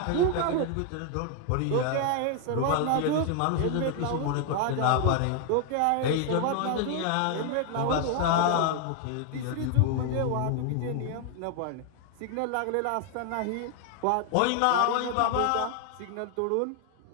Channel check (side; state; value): both; different; correlation 0.00